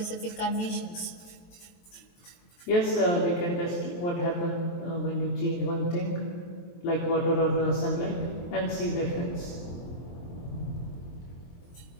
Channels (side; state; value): right; late; 23 ms